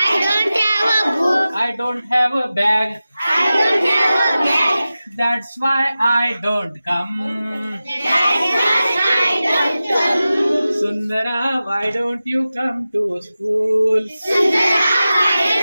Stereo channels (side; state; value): both; inverted; correlation -0.95